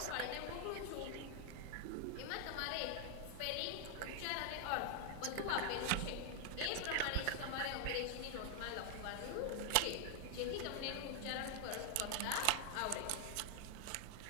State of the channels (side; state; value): both; different; correlation 0.00